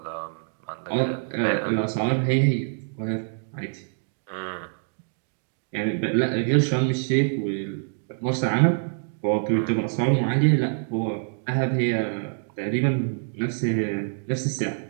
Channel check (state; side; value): silent; left; digital silence